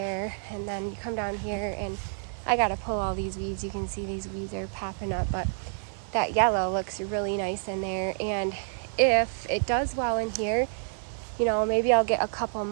And then you come down here and I gotta pull all these weeds. You can see these weeds are popping up, but that yellow looks really nice in there. And if it does well in here, you know, maybe I'll get a couple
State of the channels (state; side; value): silent; left; digital silence